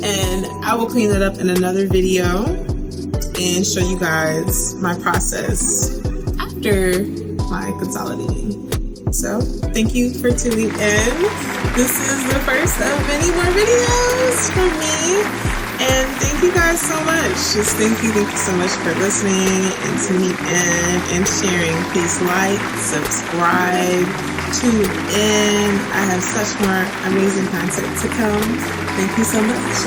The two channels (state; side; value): identical; both; correlation 1.00